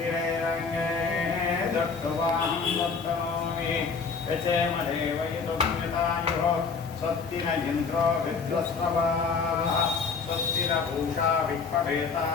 दत्तवाहं दत्तनोमि यचेमदेव यदुम्यतायुः स्वस्ति न इन्द्रो विद्वस्रवाः स्वस्ति न पूषा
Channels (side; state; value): right; quieter; 5.1 dB